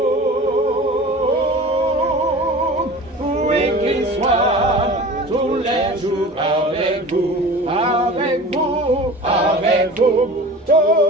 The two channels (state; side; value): normal; both; correlation 0.38